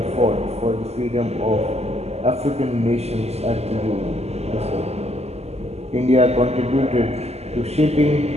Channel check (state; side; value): late; left; 0.30 ms